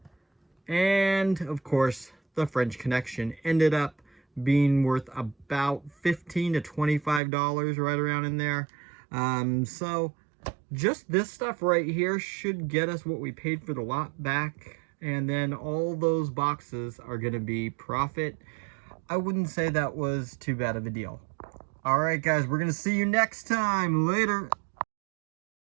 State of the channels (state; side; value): drops out; left; at 7.2 s